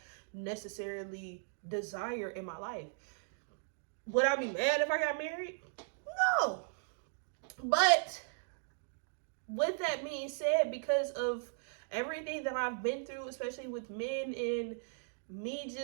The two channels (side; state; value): left; silent; digital silence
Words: necessarily desire in my life. Would I be mad if I got married? No. But with that being said, because of everything that I've been through, especially with men and me